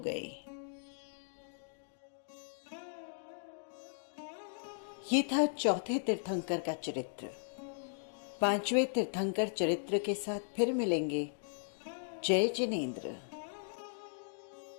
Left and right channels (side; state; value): right; silent; digital silence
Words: ये था चौथे तीर्थंकर का चरित्र। 5वें तीर्थंकर चरित्र के साथ फिर मिलेंगे। जय जिनेंद्र।